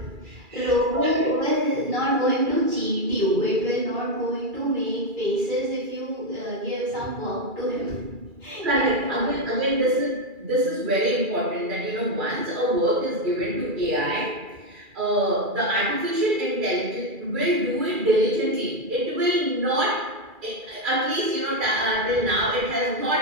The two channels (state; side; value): late; left; 2.4 ms